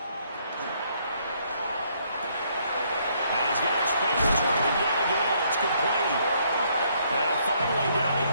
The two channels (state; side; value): inverted; both; correlation -0.69